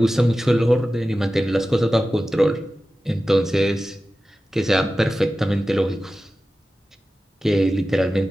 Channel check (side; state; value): both; normal; correlation 0.95